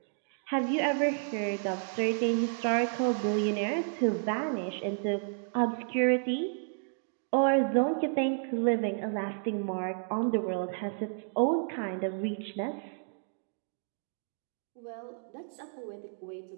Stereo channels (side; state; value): left; silent; digital silence